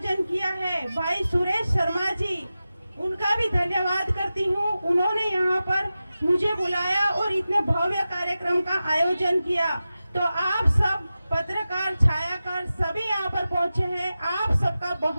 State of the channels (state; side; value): inverted; both; correlation -0.94